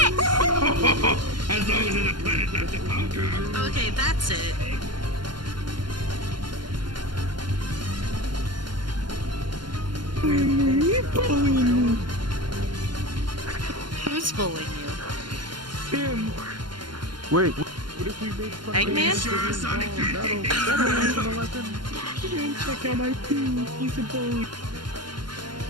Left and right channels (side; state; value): left; late; 0.71 ms